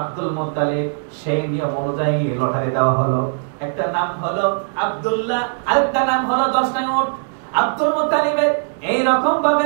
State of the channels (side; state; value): left; silent; digital silence